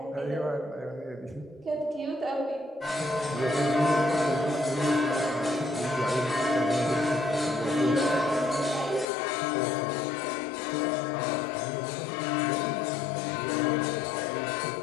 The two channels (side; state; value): right; drops out; at 9.1 s